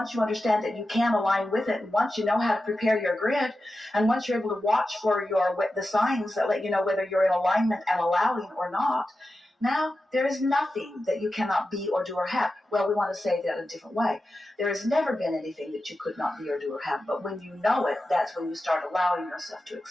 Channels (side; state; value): both; normal; correlation 0.92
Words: you understand that you can align with it, and once you know how to prepare your grid, and once you're able to watch for the signs that let you know whether you're in alignment and allowing or not, now there is nothing that you cannot be or do or have. Well, we want to say that in a different way. There has never been anything that you could not be or do or have, but when you know it, that's when you start allowing yourself to